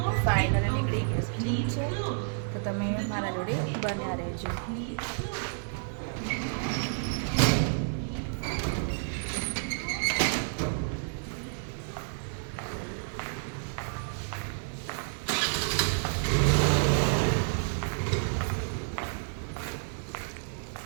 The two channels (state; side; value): silent; left; 58 dB below the other